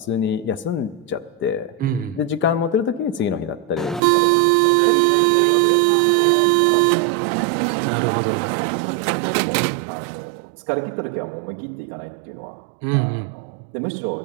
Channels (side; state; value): left; drops out; at 4.0 s